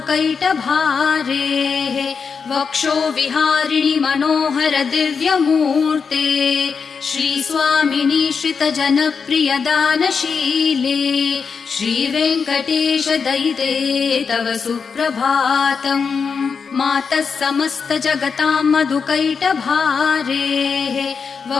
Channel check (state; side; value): quieter; right; 5.7 dB